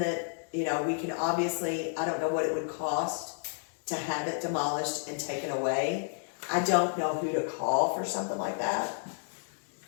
you know, we can obviously, I don't know what it would cost to have it demolished and taken away. I don't know who to call for something like that.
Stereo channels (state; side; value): silent; right; digital silence